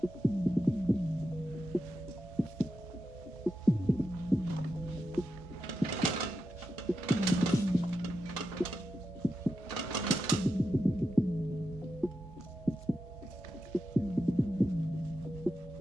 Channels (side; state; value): both; normal; correlation 0.88